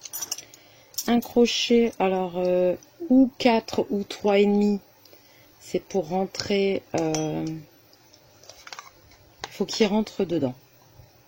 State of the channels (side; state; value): both; identical; correlation 1.00